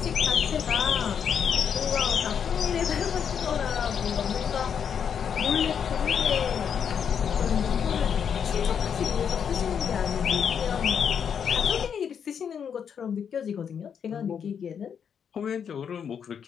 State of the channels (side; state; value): right; quieter; 7.6 dB